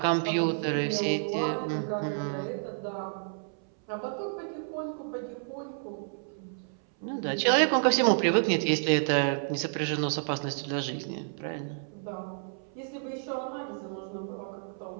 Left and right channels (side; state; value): left; silent; 58 dB below the other